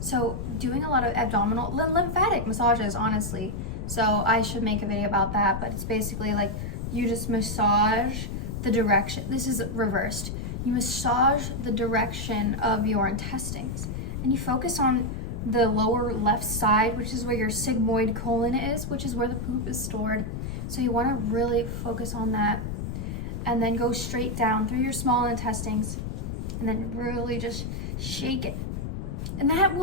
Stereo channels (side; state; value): left; noise; rumble, 5 dB below the sound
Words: doing a lot of abdominal lymphatic massages, honestly, So I should make a video about that, but it's basically like you just massage the direction. This is reversed. You massage the direction of your intestines and you focus on the lower left side, which is where your sigmoid colon is, which is where the poop is stored. So you want to really focus on that and then go straight down through your small intestines and then really just shake it. And that will